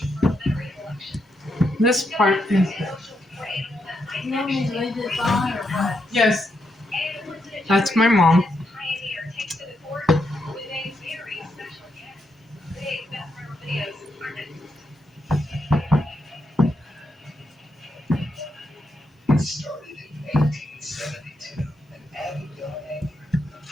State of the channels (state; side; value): normal; both; correlation 0.81